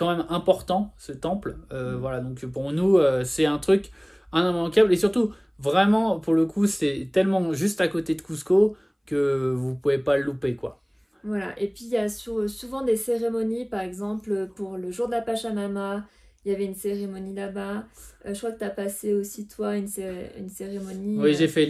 même important, ce temple. Voilà, donc pour nous, c'est un truc immanquable. Et surtout, vraiment, pour le coup, c'est tellement juste à côté de Cusco que vous pouvez pas le louper, quoi. Voilà, et puis il y a souvent des cérémonies, par exemple pour le jour de la Pachamama, il y avait une cérémonie là-bas. Je crois que tu as passé aussi toi une cérémonie. Oui, j'ai fait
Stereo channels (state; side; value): identical; both; correlation 1.00